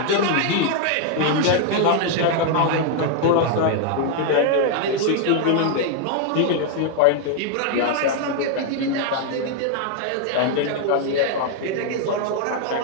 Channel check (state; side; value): different; both; correlation 0.00